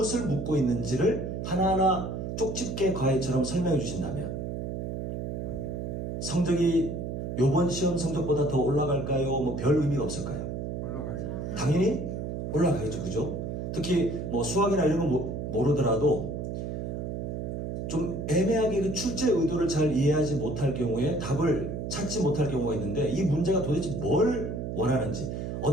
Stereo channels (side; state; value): right; noise; hum, 4 dB below the sound